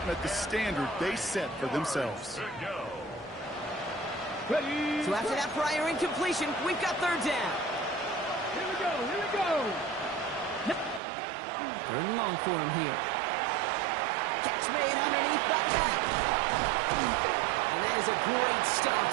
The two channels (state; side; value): drops out; left; at 11.0 s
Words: met the standard they set for themselves. Ready? So after that prior incompletion, we've got 3rd down. Here we go, here we go! 3rd and long for him here. Catch made underneath the back. And that is a great stop